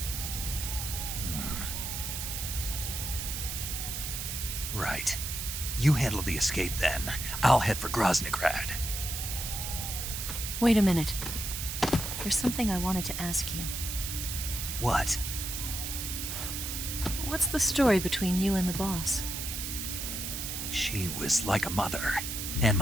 Right. You handle the escape then. I'll head for Groznygrad. Wait a minute. There's something I wanted to ask you. What? What's the story between you and the boss? She was like a mother, and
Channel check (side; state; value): right; noise; hiss, 4 dB below the sound